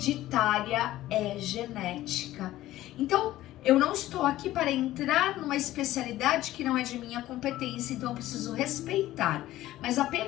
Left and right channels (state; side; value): quieter; right; 15.1 dB